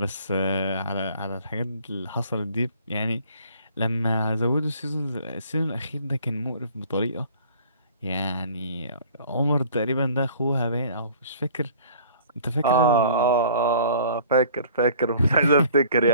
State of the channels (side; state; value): both; inverted; correlation -0.52